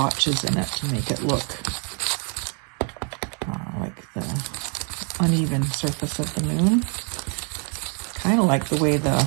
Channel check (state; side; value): quieter; left; 38.3 dB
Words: in it to make it look like the uneven surface of the moon. Kind of like the way the